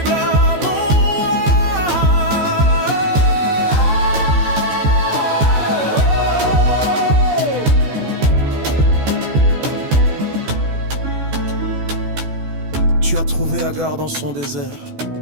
à mon roi. Tu as trouvé Agar dans son désert.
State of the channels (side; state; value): left; late; 14 ms